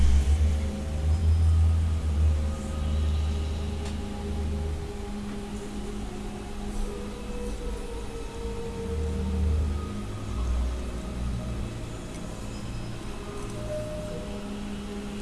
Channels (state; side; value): identical; both; correlation 1.00